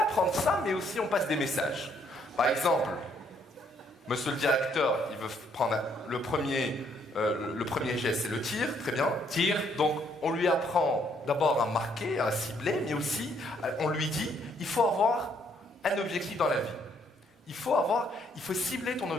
ça, mais aussi on passe des messages. Par exemple, monsieur le directeur, il veut prendre le premier geste, c'est le tir, très bien. Tir. Donc, on lui apprend d'abord à marquer, à cibler, mais aussi, on lui dit, il faut avoir un objectif dans la vie. Il faut cibler ton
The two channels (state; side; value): normal; both; correlation 0.69